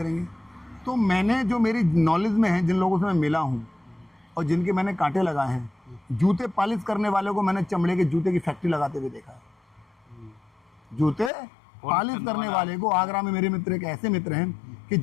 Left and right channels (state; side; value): drops out; right; at 11.3 s